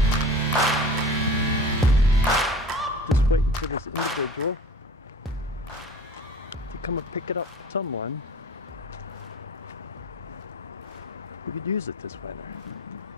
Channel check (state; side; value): normal; both; correlation 0.41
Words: Just waiting for this individual to come and pick it up with someone who could use it this winter.